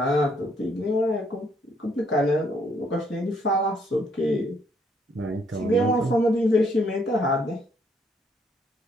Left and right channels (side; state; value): both; normal; correlation 0.69